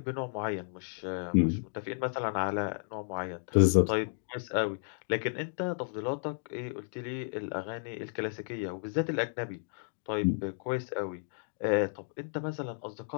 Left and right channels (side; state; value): right; silent; digital silence